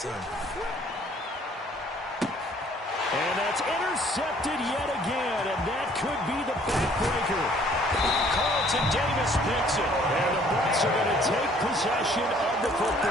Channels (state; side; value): normal; both; correlation 0.59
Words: And that's intercepted yet again, and that could be the backbreaker. Carlton Davis picks it, and the Bucs are going to take possession of the